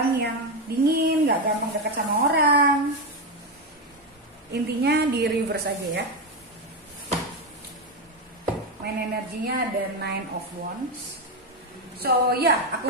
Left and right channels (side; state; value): both; normal; correlation 0.10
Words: yang dingin, nggak gampang dekat sama orang. Intinya di reverse aja ya. Main energinya ada Nine of Wands. So ya, aku